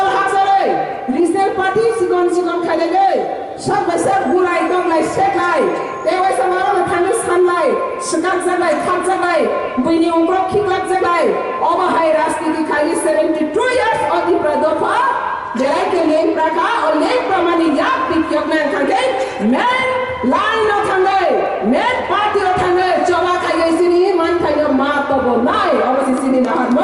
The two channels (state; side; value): identical; both; correlation 1.00